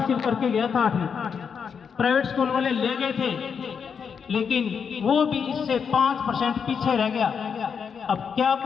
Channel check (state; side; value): quieter; right; 6.6 dB